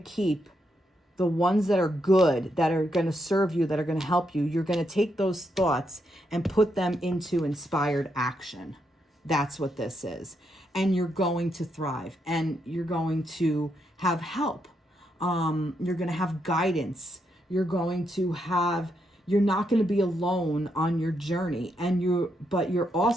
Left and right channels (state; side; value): normal; both; correlation 0.80